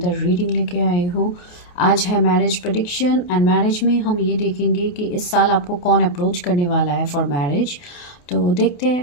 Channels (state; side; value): late; right; 28 ms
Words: रीडिंग लेके आई हूँ। आज है मैरिज प्रेडिक्शन एंड मैरिज में हम ये देखेंगे कि इस साल आपको कौन अप्रोच करने वाला है फॉर मैरिज। तो देखते